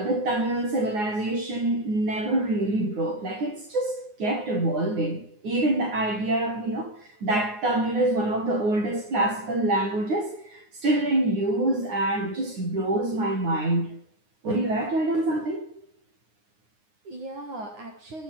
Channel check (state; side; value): late; left; 9.6 ms